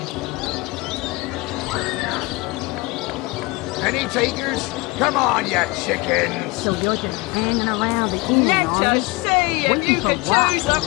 Any takers? Come on, you chickens! So you're just hanging around the inn, Let us see if you can choose the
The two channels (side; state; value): right; quieter; 24.0 dB